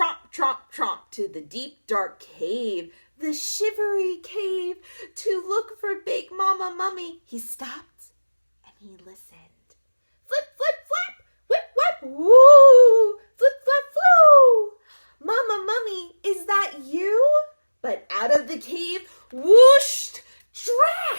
tromp, tromp to the deep dark cave, the shivery cave, to look for Big Mama Mummy. He stopped and he listened. Flip, flip, flap, whip, whip, woo, flip, flap, floo. "Mama Mummy, is that you?" But out of the cave whooshed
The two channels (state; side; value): inverted; both; correlation -1.00